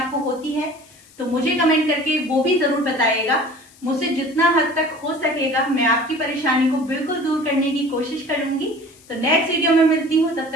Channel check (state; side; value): noise; left; hiss, 26 dB below the sound